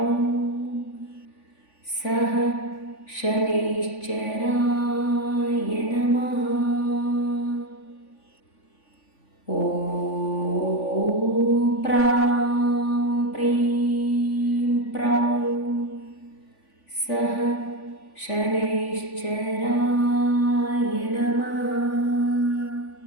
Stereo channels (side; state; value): right; late; 3.5 ms